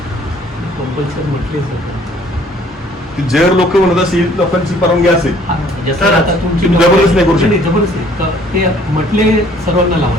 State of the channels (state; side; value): normal; both; correlation 0.58